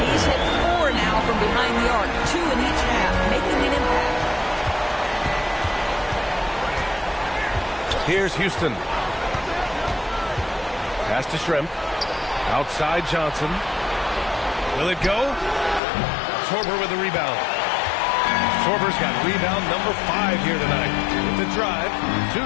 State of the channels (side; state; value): right; drops out; at 15.8 s